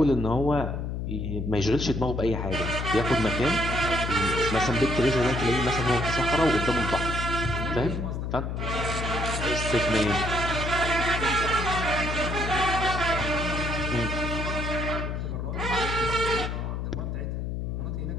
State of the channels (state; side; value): noise; left; hum, 3 dB below the sound